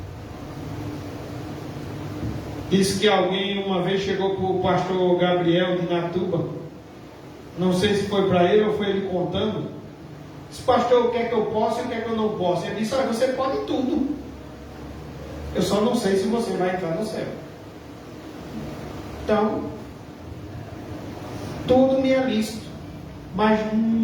Diz que alguém uma vez chegou para o pastor Gabriel de Natuba. Não sei se foi para ele ou foi ele contando. Disse: pastor, o que é que eu posso e o que é que eu não posso? Ele disse: olha, você pode tudo. Eu só não sei se você vai entrar no céu. Então, tudo me é lícito, mas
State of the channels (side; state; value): both; identical; correlation 1.00